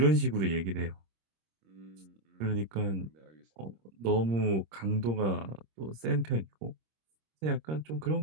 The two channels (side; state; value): left; late; 26 ms